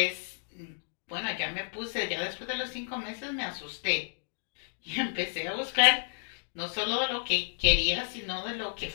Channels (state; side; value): silent; right; digital silence